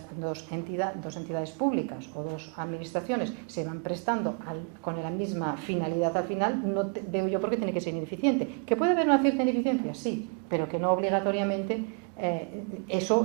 dos entidades públicas o dos administraciones se van prestando con la misma finalidad al final, no veo yo por qué tiene que ser ineficiente. ¿Que puede haber una cierta ineficiencia? Sí, pero que no obligatoriamente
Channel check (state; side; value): quieter; left; 38.7 dB